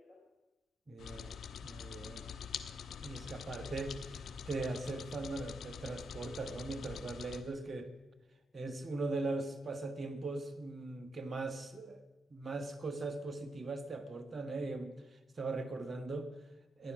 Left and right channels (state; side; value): normal; both; correlation 0.81